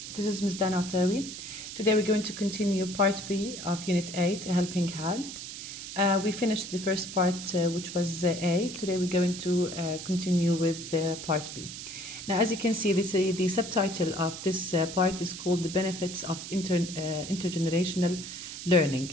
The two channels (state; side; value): noise; right; hiss, 9 dB below the sound